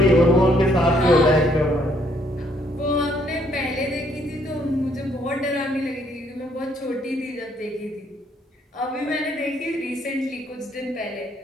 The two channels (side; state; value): both; normal; correlation 0.68